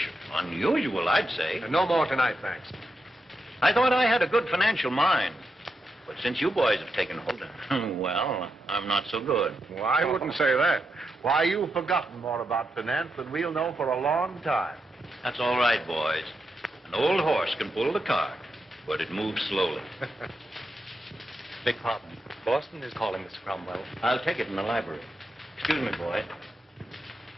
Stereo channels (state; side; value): normal; both; correlation 0.85